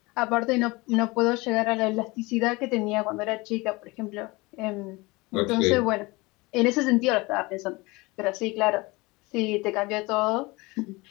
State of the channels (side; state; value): right; quieter; 23.5 dB